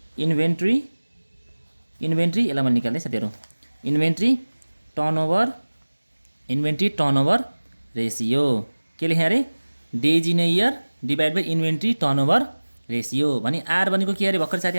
यसलाई मैले निकाल्दै साथीहरू, इन्भेन्ट्री टर्नओभर रेसियो। के लेखेँ अरे? Days in year divide by inventory turnover ratio. भने आर भनेको के अरे? भर्खर साथी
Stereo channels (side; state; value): both; inverted; correlation -1.00